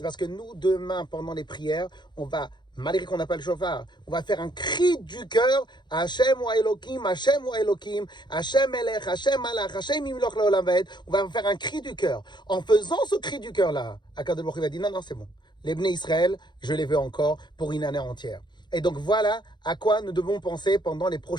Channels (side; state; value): right; late; 0.21 ms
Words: parce que nous, demain, pendant les prières, on va, malgré qu'on n'a pas le chauffard, on va faire un cri du cœur, Hashem wa Elokim, Hashem wa Elokim, Hashem Elech, Hashem Malach, Hashem Imloch Leolam Vaed. On va faire un cri du cœur. En faisant ce cri du cœur-là, Akadosh Baruch Hu va dire, non, c'est bon. Les Bnei Israël, je les veux encore pour une année entière. Et donc voilà à quoi nous devons penser pendant les